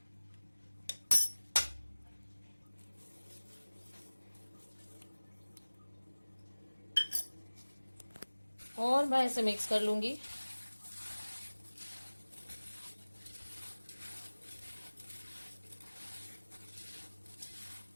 और मैं इसे मिक्स कर लूंगी।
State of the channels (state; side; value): inverted; both; correlation -1.00